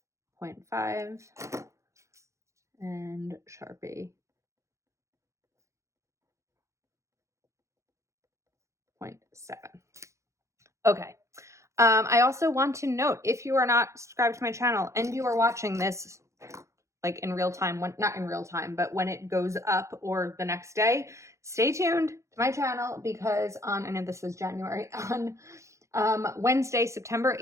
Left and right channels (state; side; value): late; left; 0.14 ms